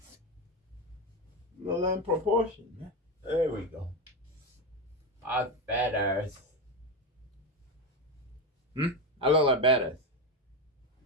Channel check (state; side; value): normal; both; correlation 0.15